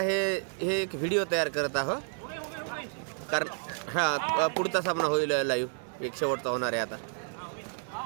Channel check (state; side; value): silent; left; 57 dB below the other